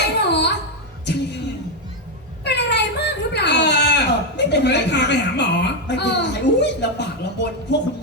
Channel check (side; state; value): both; normal; correlation 0.05